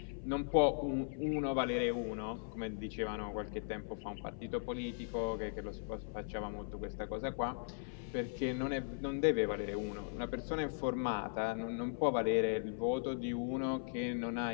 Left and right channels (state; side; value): silent; right; 52 dB below the other